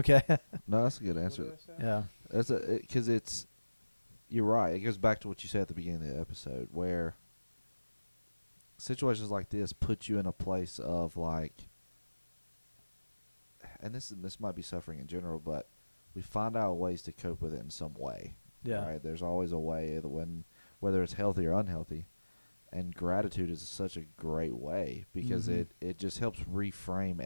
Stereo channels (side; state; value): both; inverted; correlation -1.00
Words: No, that's a good answer. What did I say? Yeah. That's because you're right. It goes back to what you said at the beginning of the episode, where situations like this put you in a place of like, and this might be suffering in general, but we find out ways to cope with it in some way. Yeah. Right? There's always a way whether it's healthy or unhealthy, and gratitude is such a great way because it just helps reframe